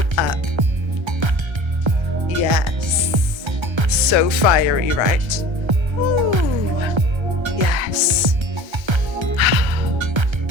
up. Yes. So fiery, right? Ooh. Yes.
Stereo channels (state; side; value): late; left; 1.3 ms